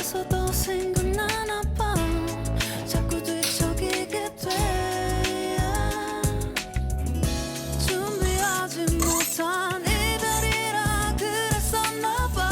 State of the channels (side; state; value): both; identical; correlation 1.00